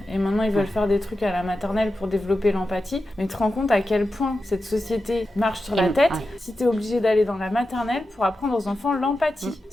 et maintenant ils veulent faire des trucs à la maternelle pour développer l'empathie, mais tu te rends compte à quel point cette société marche sur la tête si tu es obligé d'aller dans la maternelle pour apprendre aux enfants l'empathie.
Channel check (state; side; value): normal; both; correlation 0.91